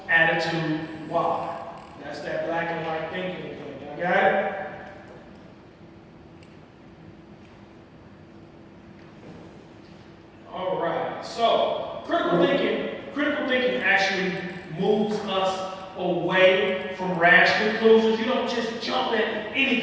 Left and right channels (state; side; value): identical; both; correlation 1.00